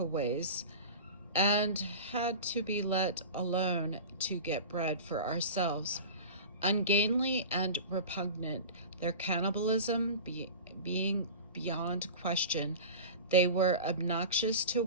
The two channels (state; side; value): inverted; both; correlation -0.33